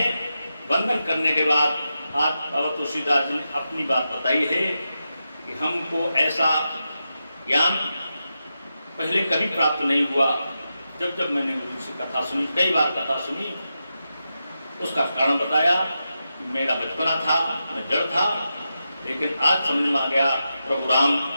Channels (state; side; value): inverted; both; correlation -0.89